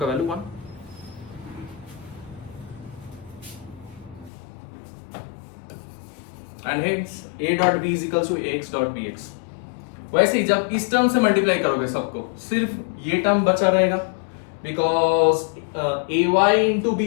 value 1। And hence a dot b is equal to ax dot bx। वैसे ही जब इस टर्म से मल्टीप्लाई करोगे सबको, सिर्फ ये टर्म बचा रहेगा, because ay into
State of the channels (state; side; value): drops out; right; at 4.3 s